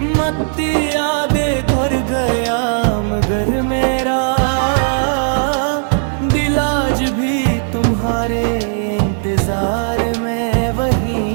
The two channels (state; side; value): silent; left; digital silence